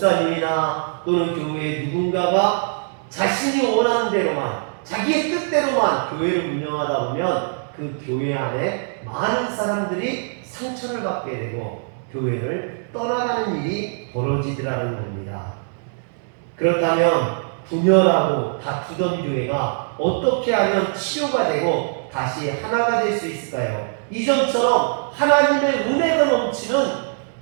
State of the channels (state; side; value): silent; left; digital silence